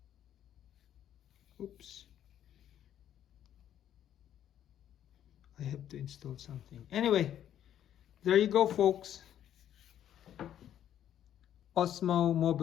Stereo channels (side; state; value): right; quieter; 10.7 dB